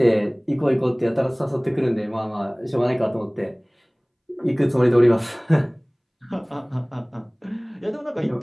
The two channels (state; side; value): identical; both; correlation 1.00